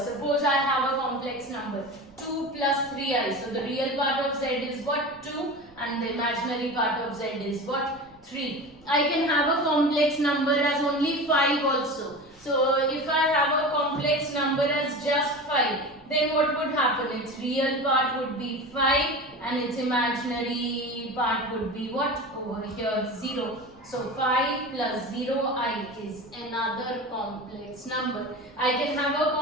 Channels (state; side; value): noise; right; rumble, 29 dB below the sound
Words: I have a complex number 2 plus 3i. So the real part of z is what? 2, and the imaginary part of z is what? 3. I can have a complex number as only 5 also. So if I have a complex number as just 5, then what would happen? Its real part would be 5 and its imaginary part would be what? Over here 0. So 5 plus 0i is another complex number. I can have a